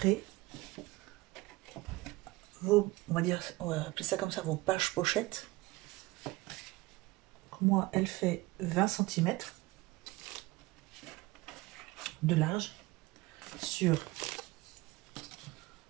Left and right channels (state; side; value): quieter; left; 21.3 dB